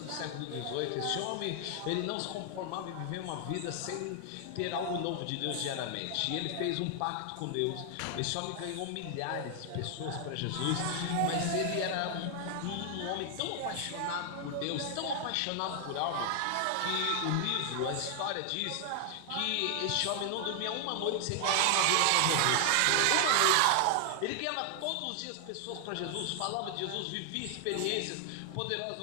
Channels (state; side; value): different; both; correlation 0.00